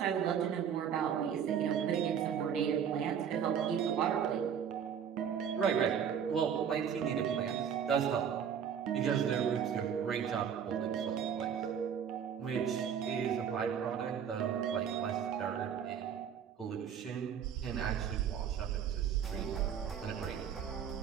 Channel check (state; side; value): quieter; left; 8.0 dB